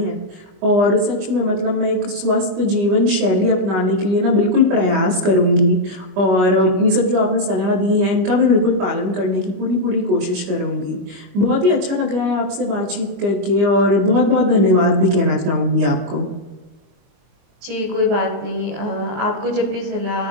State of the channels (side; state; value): left; late; 25 ms